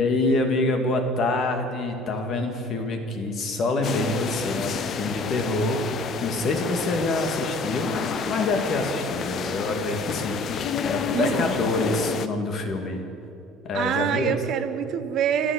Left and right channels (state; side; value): normal; both; correlation 0.50